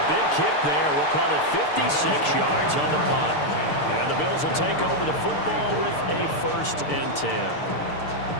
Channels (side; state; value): right; late; 6.7 ms